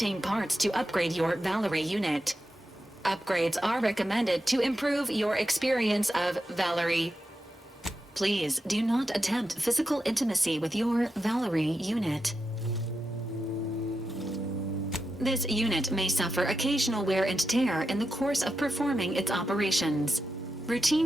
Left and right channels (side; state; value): both; normal; correlation 0.88